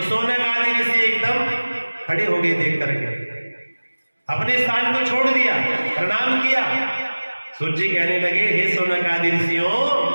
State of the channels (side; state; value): both; inverted; correlation -1.00